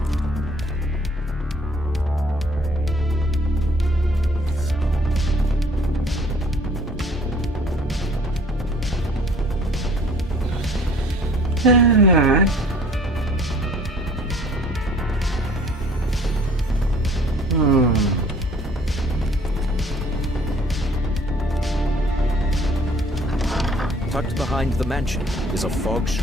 Tucked behind the mansion is a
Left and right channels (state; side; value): normal; both; correlation 0.55